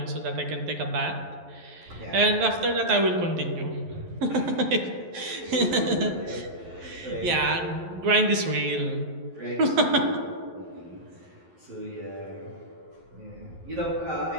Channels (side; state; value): left; late; 11 ms